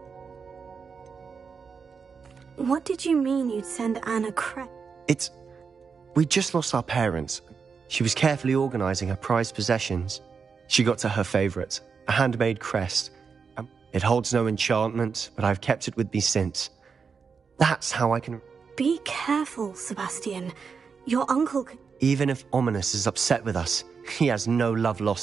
What did you mean you'd send Anne a crest? It's... We just lost our parents. She was carefully organising her prized possessions. She got to her favourite, a handmade crest. It holds no enchantment, but I've kept it with me since. That's how I can... Be careful, Sebastian. Your uncle could... Even if Ominous is upset with us, he has no love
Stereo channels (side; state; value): left; quieter; 5.7 dB